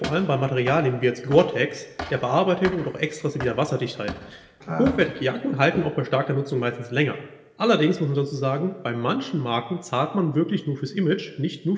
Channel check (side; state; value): both; identical; correlation 1.00